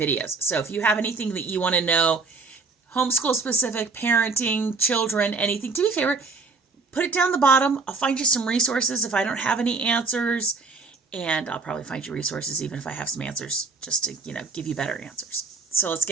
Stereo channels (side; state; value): left; quieter; 4.0 dB